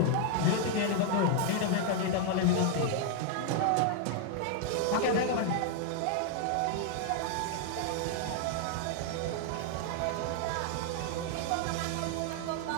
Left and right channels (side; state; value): both; different; correlation 0.00